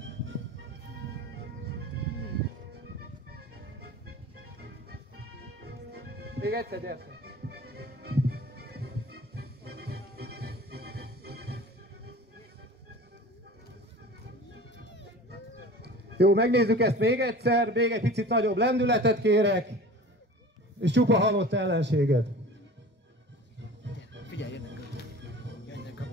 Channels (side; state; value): both; normal; correlation 0.39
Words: Még egyszer, gyertek! Jó, megnézzük ezt még egyszer, még egy picit nagyobb lendületet kérek, és csupa halott ellenséget. Figyelj, jönnek a